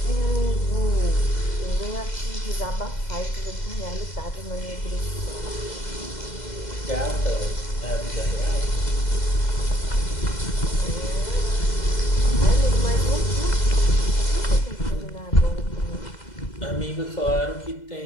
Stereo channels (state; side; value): late; right; 2.0 ms